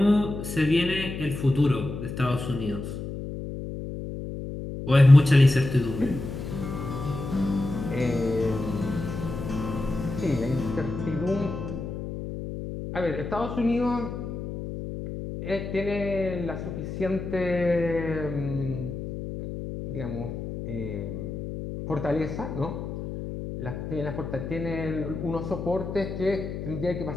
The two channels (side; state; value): left; noise; hum, 7 dB below the sound